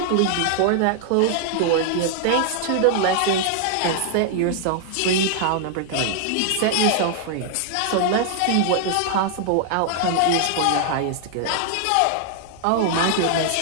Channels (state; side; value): different; both; correlation 0.00